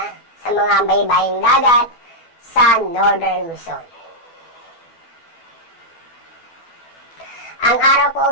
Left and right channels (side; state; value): right; late; 12 ms